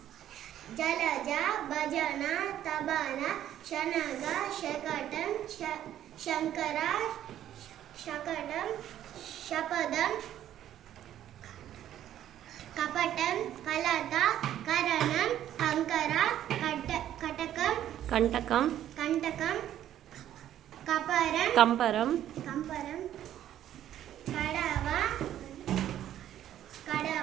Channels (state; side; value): quieter; left; 11.6 dB